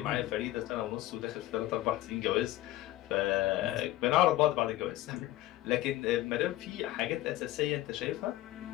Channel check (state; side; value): quieter; right; 15.6 dB